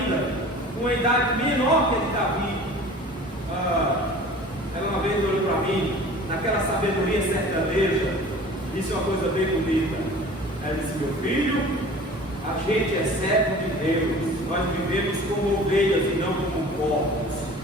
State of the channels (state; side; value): normal; both; correlation 0.43